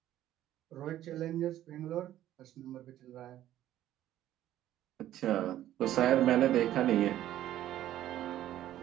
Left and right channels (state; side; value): quieter; left; 12.9 dB